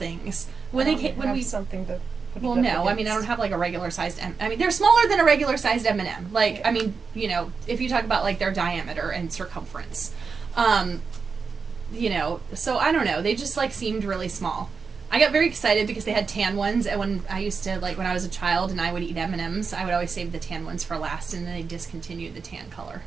When we something to put well, it up no, I against. mean, I don't have like a regular sized I mean, they're smaller than a regular sized M&M. Like, I mean, if you talk about like their diameter and circumference. So I don't know. They just like seemed really small. I got very excited because they had tan ones, and when I used to, like, when I was a child and I would eat M&Ms, I would always save the tan ones for last, and then they discontinued the tan color.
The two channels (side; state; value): left; quieter; 5.2 dB